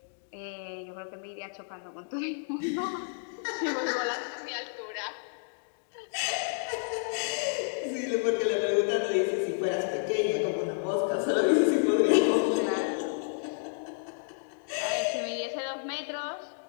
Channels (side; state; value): right; silent; digital silence